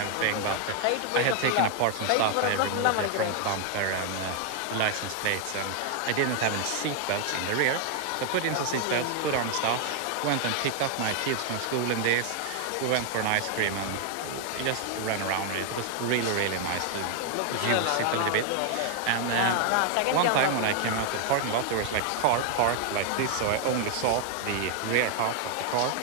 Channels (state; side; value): different; both; correlation 0.00